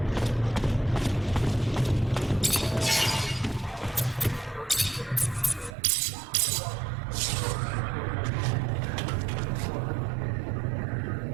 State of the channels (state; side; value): drops out; left; at 5.8 s